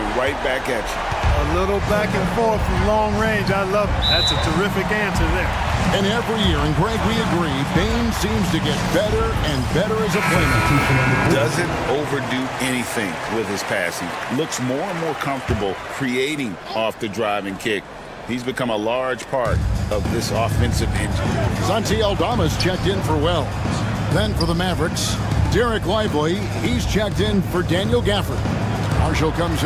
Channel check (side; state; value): both; identical; correlation 1.00